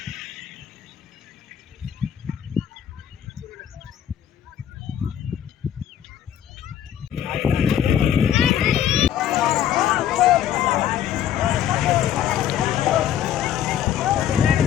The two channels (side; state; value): right; quieter; 10.3 dB